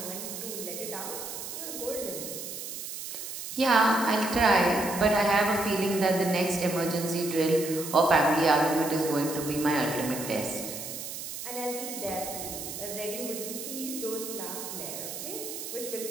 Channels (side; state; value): right; noise; hiss, 8 dB below the sound